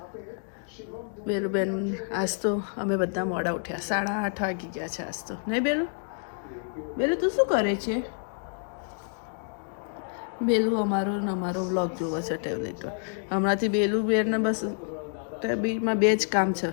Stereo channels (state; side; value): silent; right; 59 dB below the other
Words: બેલુબેન આજ તો અમે બધા મોડા ઉઠ્યા, 8:30 વાગી ગયા છે આજ તો. નહીં બેલુ? બેલુ તું શું કરે છે? બેલુ અમારો વ્લોગ જોવો છે ટેબ્લેટ પર. હમણાંથી બેલુબેનને બસ ટેબ્લેટમાં બે જ કામ છે,